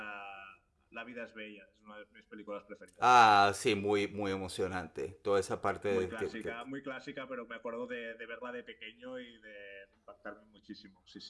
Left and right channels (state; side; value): identical; both; correlation 1.00